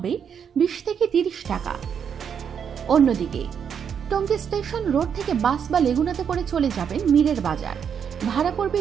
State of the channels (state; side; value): quieter; left; 7.6 dB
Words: 20 থেকে 30 টাকা। অন্যদিকে টঙ্গী স্টেশন রোড থেকে বাস বা লেগুনাতে করে চলে যাবেন মিরের বাজার। ভাড়া